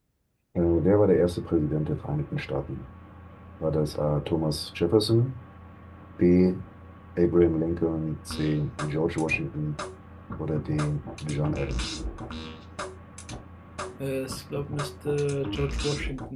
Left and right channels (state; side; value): identical; both; correlation 1.00